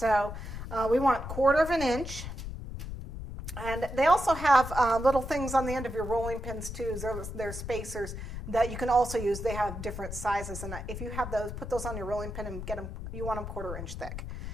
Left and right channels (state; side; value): noise; left; rumble, 8 dB below the sound